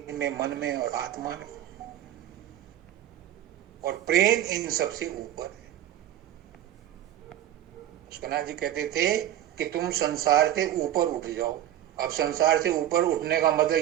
में, मन में और आत्मा में। और प्रेम इन सबसे ऊपर है। सुना जी कहते थे कि तुम संसार से ऊपर उठ जाओ। अब संसार से ऊपर उठने का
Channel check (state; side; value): quieter; left; 12.1 dB